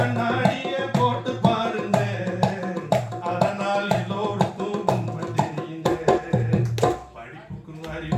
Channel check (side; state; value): both; identical; correlation 1.00